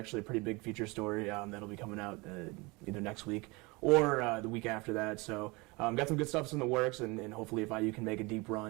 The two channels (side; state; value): left; quieter; 25.6 dB